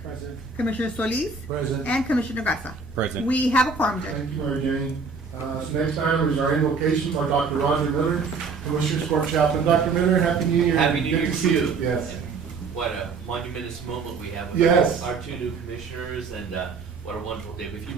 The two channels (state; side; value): quieter; left; 4.7 dB